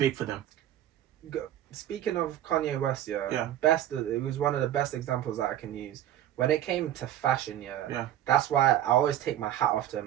for them. Speaking of Kanye West, it was one of the best examples that I can use. When it came to fashion, that's why I always take my hat off to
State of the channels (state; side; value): quieter; left; 12.1 dB